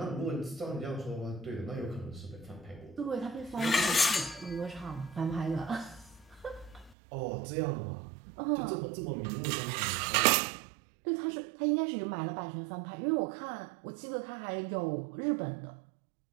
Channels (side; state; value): left; drops out; at 7.0 s